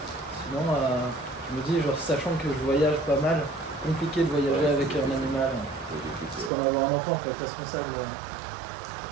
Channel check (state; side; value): drops out; left; at 6.5 s